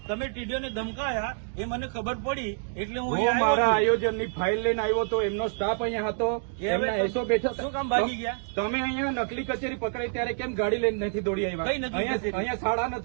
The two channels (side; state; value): left; silent; digital silence